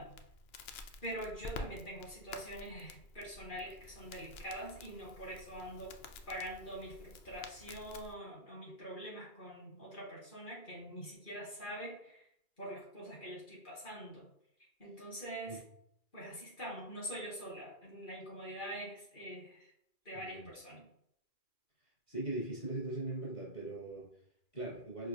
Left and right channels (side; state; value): right; late; 2.3 ms